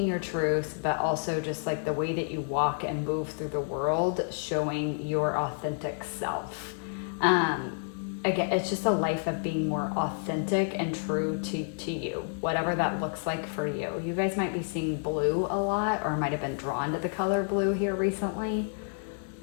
your truth, but also just like the way that you walk and move through the world, showing your authentic self. Again, it's just a life of being more authentic and true to you, whatever that looks like for you. You guys might be seeing blue a lot, or might have been drawn to the color blue here recently.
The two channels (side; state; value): right; silent; 57 dB below the other